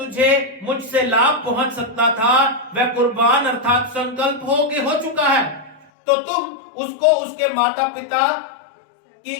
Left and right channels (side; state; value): right; drops out; at 5.9 s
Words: मुझसे लाभ पहुंच सकता था वह कुर्बान अर्थात संकल्प हो चुका है, तो तुम उसको उसके माता पिता की